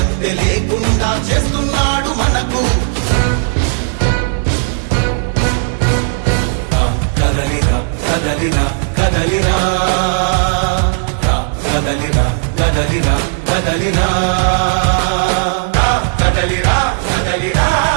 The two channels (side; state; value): left; silent; 68 dB below the other